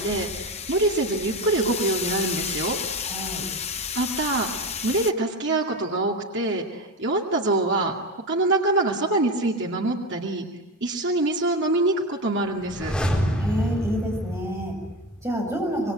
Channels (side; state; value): both; normal; correlation 0.19